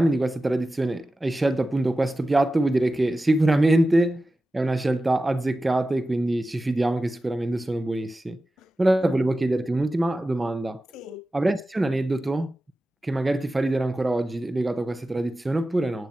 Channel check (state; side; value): normal; both; correlation 0.94